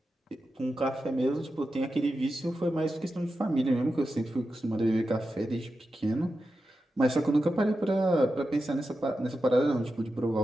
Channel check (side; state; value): both; normal; correlation 0.91